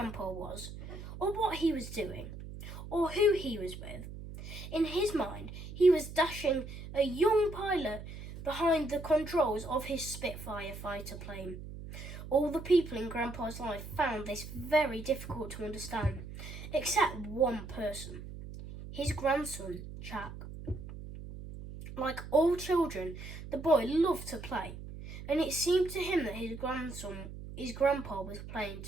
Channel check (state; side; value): noise; right; hum, 11 dB below the sound